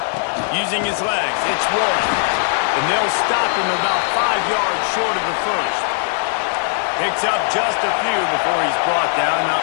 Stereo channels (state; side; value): silent; right; digital silence